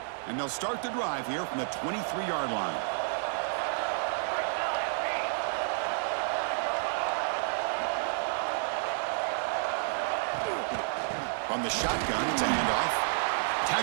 And they'll start the drive here from the 23-yard line. From the shotgun, it's a handoff.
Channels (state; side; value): silent; left; digital silence